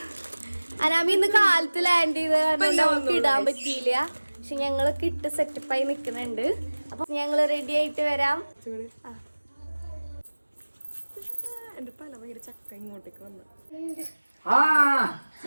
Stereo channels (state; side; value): inverted; both; correlation -1.00